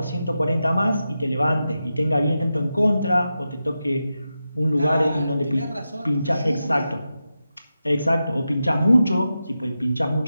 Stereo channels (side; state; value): both; inverted; correlation -0.90